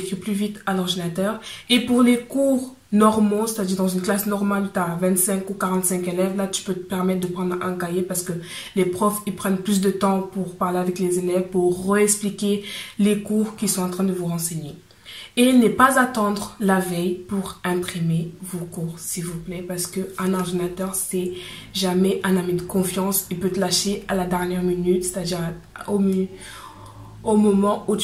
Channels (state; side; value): identical; both; correlation 1.00